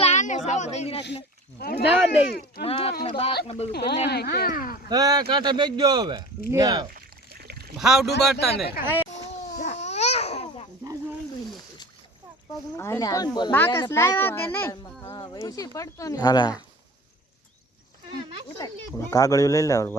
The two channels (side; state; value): both; normal; correlation 0.40